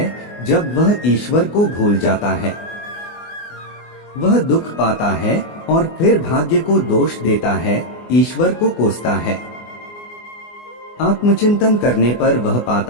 जब वह ईश्वर को भूल जाता है। वह दुख पाता है और फिर भाग्य को दोष देता है, ईश्वर को कोसता है। आत्मचिंतन करने पर वह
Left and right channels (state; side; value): late; right; 24 ms